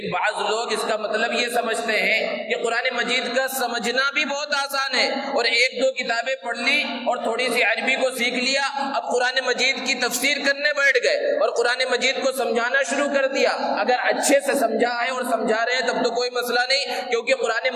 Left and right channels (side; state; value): both; identical; correlation 1.00